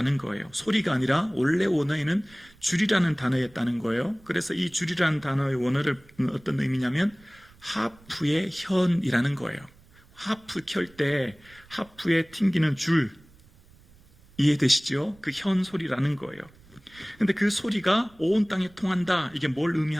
거예요. 소리가 아니라 원래 원어에는 줄이라는 단어였다는 거예요. 그래서 이 줄이라는 단어의 원어를 어떤 의미냐면 하프의 현이라는 거예요. 하프 켤 때 하프에 튕기는 줄 이해되시죠? 그 현 소리라는 거예요. 근데 그 소리가 온 땅에 통한다. 이게 뭘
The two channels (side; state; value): right; noise; rumble, 27 dB below the sound